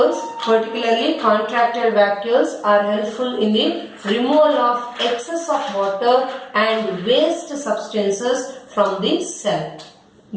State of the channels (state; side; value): identical; both; correlation 1.00